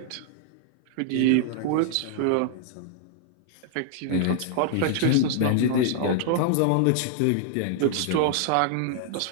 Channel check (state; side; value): different; both; correlation -0.01